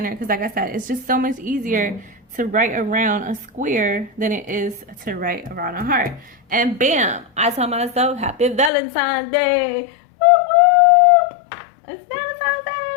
because like I said, it's just so much easier to write around a square than it is to write around a heart. And bam, I told myself, happy Valentine's Day. Woo woo! It's Valentine's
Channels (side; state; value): right; drops out; at 8.7 s